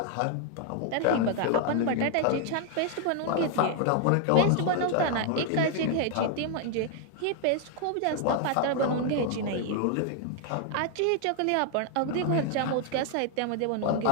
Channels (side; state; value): both; different; correlation 0.00